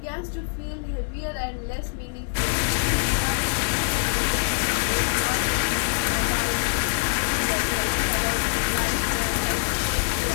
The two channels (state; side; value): silent; right; digital silence